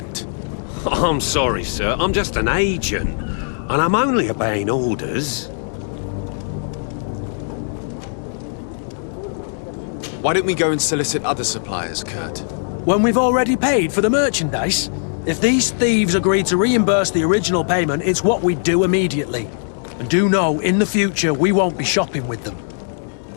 I'm sorry, sir. I'm just an agent. And I'm only obeying orders. Why don't we go and solicit other suppliers, Kurt? When we've already paid for the merchandise? If these thieves agree to reimburse the original payment, it's what we do immediately. And do know, in the future, we won't be shopping with them.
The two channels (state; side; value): silent; right; digital silence